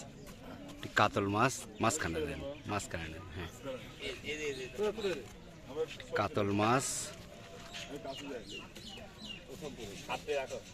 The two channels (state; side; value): identical; both; correlation 1.00